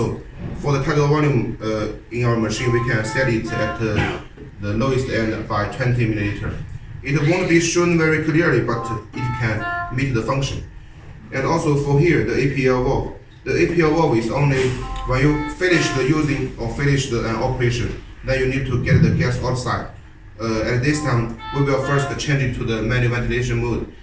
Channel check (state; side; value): identical; both; correlation 1.00